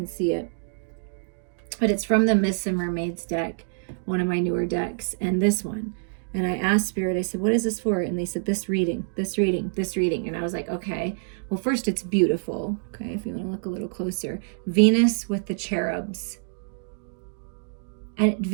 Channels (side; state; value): left; silent; digital silence